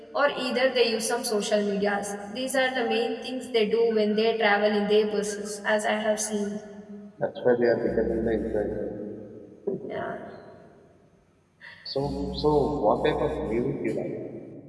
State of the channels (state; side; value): identical; both; correlation 1.00